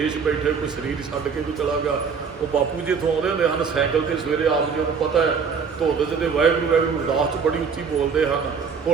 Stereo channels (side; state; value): left; quieter; 5.9 dB